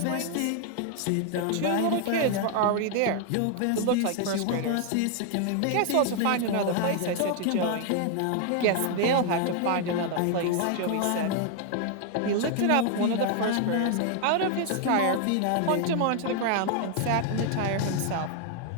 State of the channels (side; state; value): both; different; correlation 0.00